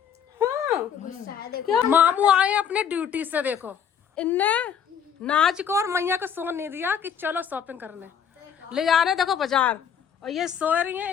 गुस्सा है देखो। क्या मामू आए अपने ड्यूटी से, देखो इनने नाच को और मैया को सोन नहीं दिया कि चलो शॉपिंग करने ले जा रहे, देखो बाजार, और ये सो रही हैं,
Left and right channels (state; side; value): quieter; right; 8.0 dB